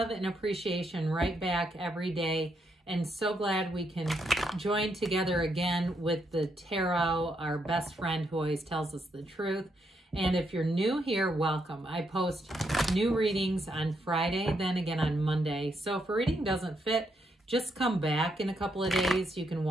and appreciation right back every day, and so glad we can join together again with the tarot, our best friend who always tells us the truth. And if you're new here, welcome. I post new readings on Friday, then again on Monday. So if a reading doesn't fit, just come back in a couple of days. You can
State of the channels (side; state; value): both; normal; correlation 0.78